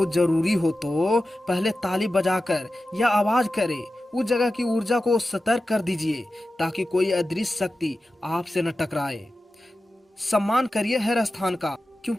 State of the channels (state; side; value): normal; both; correlation 0.94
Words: जरूरी हो तो पहले ताली बजाकर या आवाज करे उस जगह की ऊर्जा को सतर्क कर दीजिए, ताकि कोई अदृश्य शक्ति आपसे न टकराए। सम्मान करिए हर स्थान का,